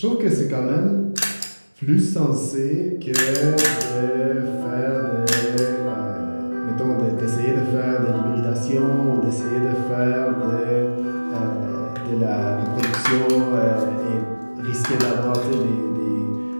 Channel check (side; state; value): both; inverted; correlation -1.00